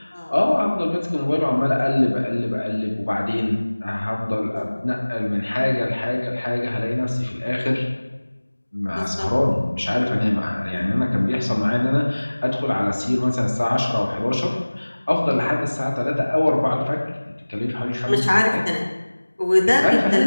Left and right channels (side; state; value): both; inverted; correlation -1.00